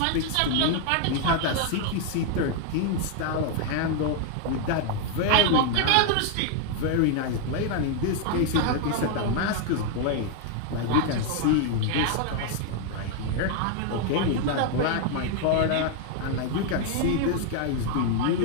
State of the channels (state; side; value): different; both; correlation 0.00